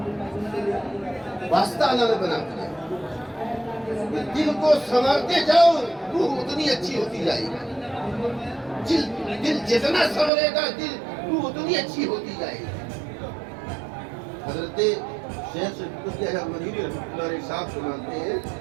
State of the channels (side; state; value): left; drops out; at 10.3 s